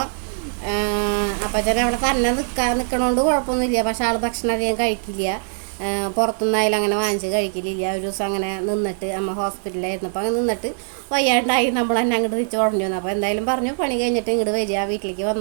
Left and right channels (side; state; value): left; silent; 62 dB below the other